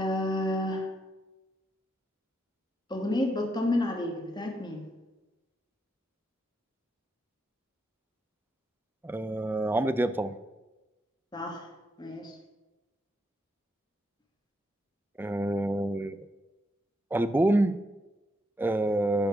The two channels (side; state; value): both; normal; correlation 0.81